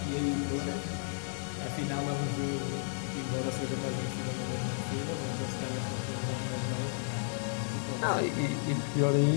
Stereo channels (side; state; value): right; silent; digital silence